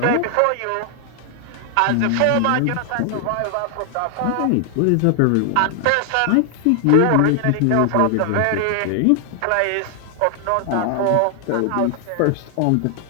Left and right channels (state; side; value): different; both; correlation 0.00